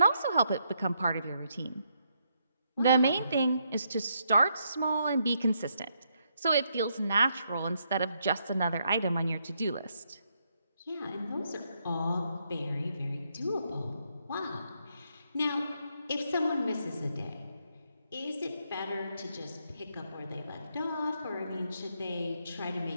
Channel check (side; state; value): both; inverted; correlation -0.77